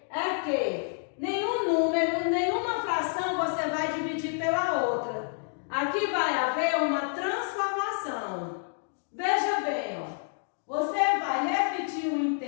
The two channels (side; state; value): right; silent; digital silence